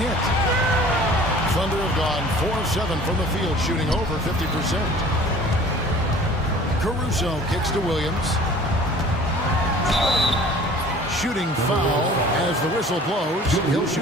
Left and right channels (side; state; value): both; normal; correlation 0.47